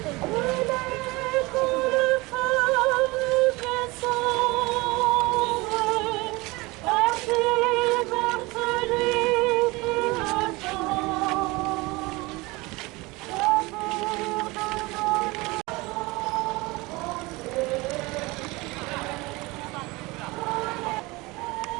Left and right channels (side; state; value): left; quieter; 23.2 dB